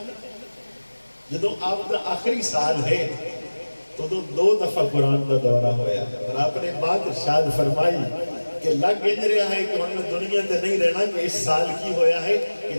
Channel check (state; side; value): inverted; both; correlation -1.00